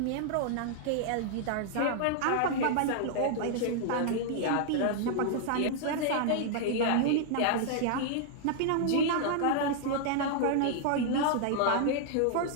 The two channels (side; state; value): both; different; correlation -0.01